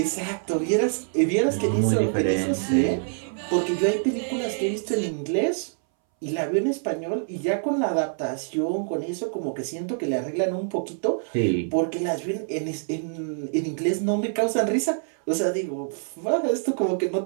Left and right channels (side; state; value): left; silent; 61 dB below the other